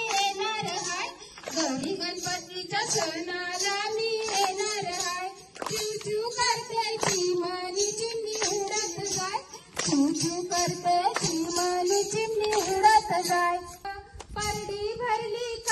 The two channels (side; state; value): both; identical; correlation 1.00